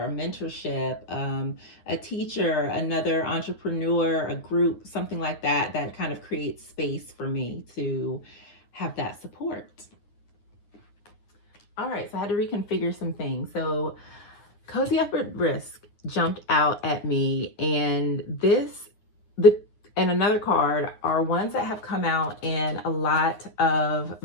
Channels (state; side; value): late; right; 9.7 ms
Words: a mentorship, a teacher, another entrepreneur, a group, something like that, that kind of creates space for me to have that support. All right, so I had to reconfigure some things. So Cozy Up at Risk jumped out at me, and and another card are ones that have come out in a lot of